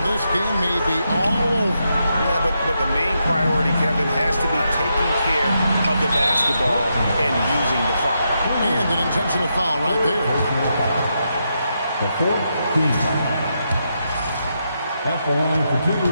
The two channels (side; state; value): both; inverted; correlation -0.83